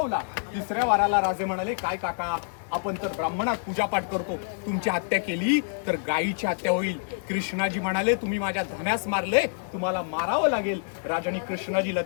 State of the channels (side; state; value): right; silent; digital silence